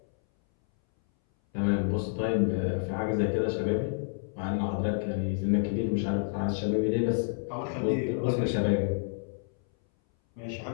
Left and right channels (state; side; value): silent; right; 58 dB below the other